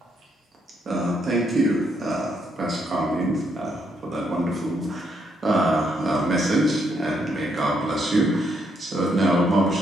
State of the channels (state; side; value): normal; both; correlation 0.75